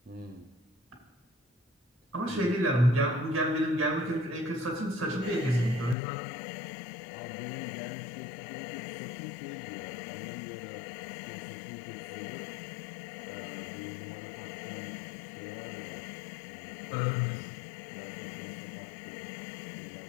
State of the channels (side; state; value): right; drops out; at 6.0 s